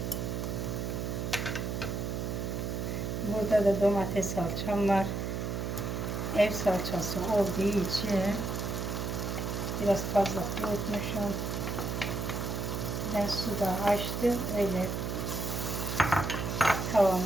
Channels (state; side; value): noise; right; hum, 2 dB below the sound